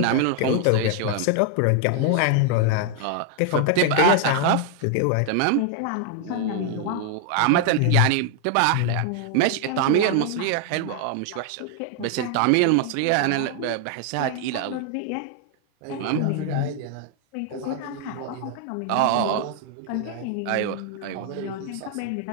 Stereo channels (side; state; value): both; different; correlation 0.00